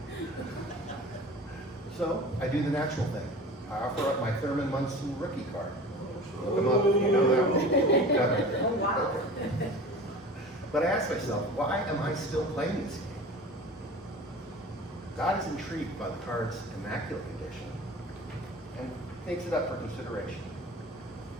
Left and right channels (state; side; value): normal; both; correlation 0.38